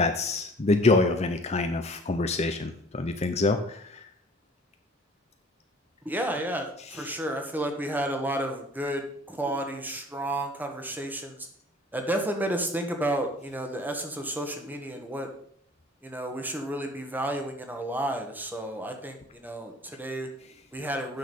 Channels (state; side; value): normal; both; correlation 0.50